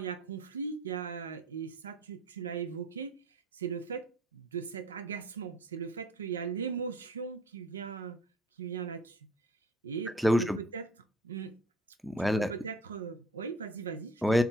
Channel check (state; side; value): normal; both; correlation 0.52